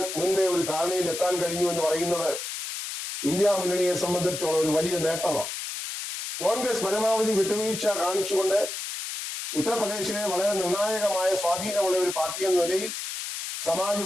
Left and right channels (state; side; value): noise; left; hiss, 6 dB below the sound